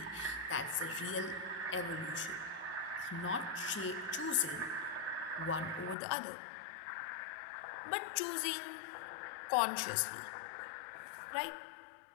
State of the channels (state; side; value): drops out; right; at 6.0 s